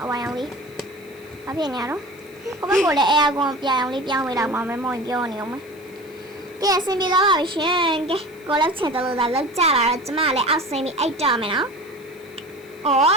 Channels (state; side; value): noise; left; hiss, 27 dB below the sound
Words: အဝါရောင်လေး ဘာဖြစ်နေရတော့ကိုဘကိုလည်းအဲအကွန်ပြအောင်လေးပြောင်းပေးတော့မှမမောင်ပြောနေအောင်မကဲအဆင်ပြေသွားပါပြီရှင်ကဲကိုလည်းချင်တယ်လို့သာလောက်ကြလာတော့ကျမလည်းအောက်ဆင်းပြီးအိတ်တော်မယ်နော်ဩ